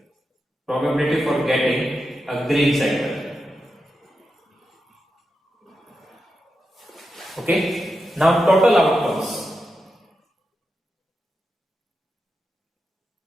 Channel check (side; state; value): both; normal; correlation 0.88